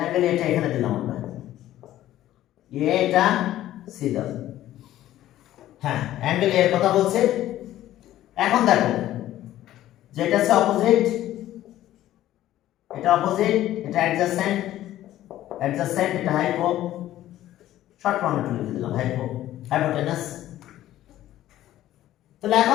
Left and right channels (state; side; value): quieter; right; 13.7 dB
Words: অ্যাঙ্গেল এটা এখানে দিলাম আমরা, এটা সি দাও। হ্যাঁ অ্যাঙ্গেল এর কথা বলছে। এখন দেখো যেটা হচ্ছে অপোজিট, এটা অপোজিট, এটা অ্যাডজাসেন্ট, এটা হাইপো, শর্ট ফর্মে একটু লিখে দিলাম হাইপোটেনাস। তাহলে